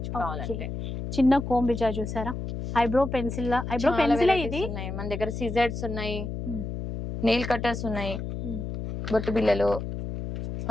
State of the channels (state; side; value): noise; left; hum, 6 dB below the sound